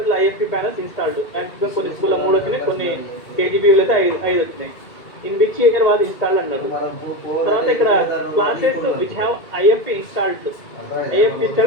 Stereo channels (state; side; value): late; right; 2.3 ms